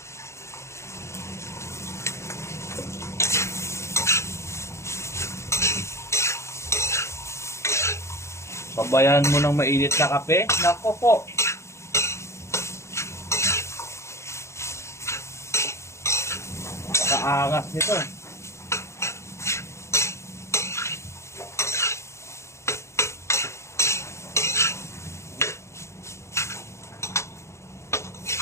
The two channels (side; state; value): right; late; 0.14 ms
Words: Sabayan mo ng mainit na kape. Nako po. Kaangas nito.